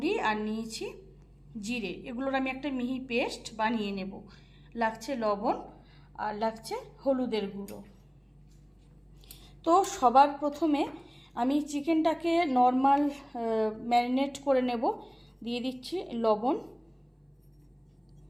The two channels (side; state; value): both; identical; correlation 1.00